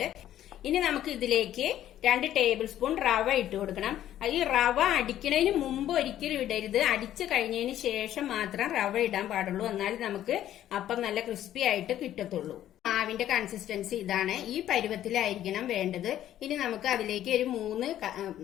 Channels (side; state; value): right; quieter; 12.1 dB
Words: ഇനി നമുക്ക് ഇതിലേക്ക് 2 ടേബിൾ സ്പൂൺ റവ ഇട്ട് കൊടുക്കണം. ഈ റവ അടിക്കുന്നതിന് മുമ്പ് ഒരിക്കലും ഇടരുത്, അടിച്ചു കഴിഞ്ഞതിന് ശേഷം മാത്രം റവ ഇടാൻ പാടുള്ളൂ. എന്നാലും നമുക്ക് അപ്പം നല്ല ക്രിസ്പി ആയിട്ട് കിട്ടത്തുള്ളൂ. മാവിന്റെ കൺസിസ്റ്റൻസി ഇതാണ്, ഈ പരുവത്തിലായിരിക്കണം വേണ്ടത്. ഇനി നമുക്ക് അതിലേക്ക് ഒരു 3